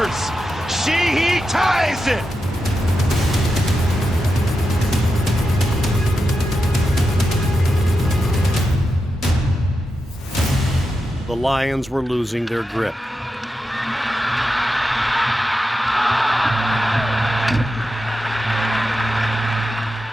Sheehy ties it! The Lions were losing their grip.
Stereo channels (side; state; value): both; normal; correlation 0.89